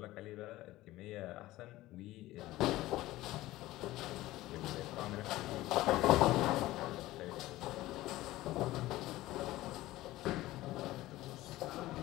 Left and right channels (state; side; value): quieter; right; 17.0 dB